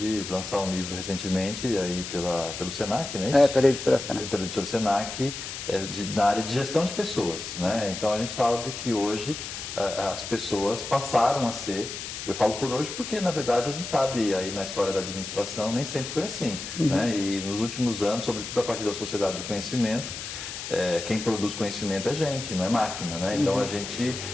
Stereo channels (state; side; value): noise; left; hiss, 8 dB below the sound